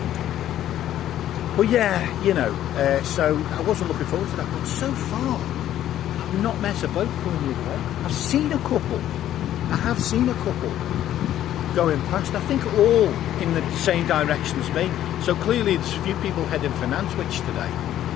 But yeah, you know, so I wasn't looking forward to that. But so far, I've not met a boat going the other way. I've seen a couple. I have seen a couple going past. I think all in the same direction as me. So clearly, there's a few people heading for Nantwich today.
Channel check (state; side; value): quieter; right; 12.0 dB